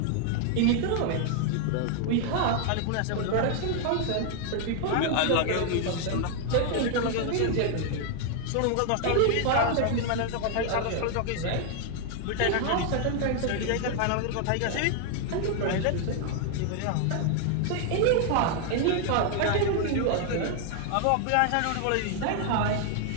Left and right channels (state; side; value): different; both; correlation 0.00